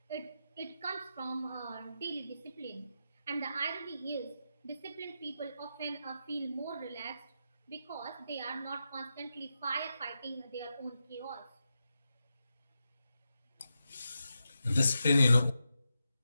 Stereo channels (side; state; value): both; inverted; correlation -0.88